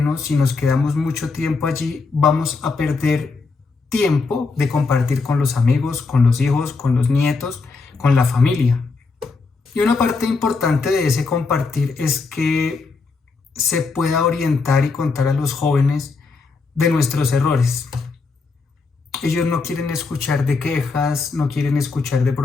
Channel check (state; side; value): quieter; right; 4.3 dB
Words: si nos quedamos mucho tiempo allí, vamos a perder tiempo de compartir con los amigos, con los hijos, con los nietos, con la familia. Y una parte importante de ese compartir es que se pueda orientar y contar a los jóvenes de nuestros errores. Ellos no quieren escuchar de quejas, no quieren escuchar de